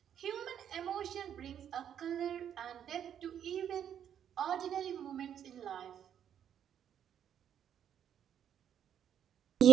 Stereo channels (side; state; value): left; quieter; 9.3 dB